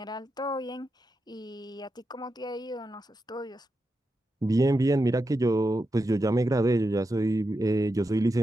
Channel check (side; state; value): both; normal; correlation 0.88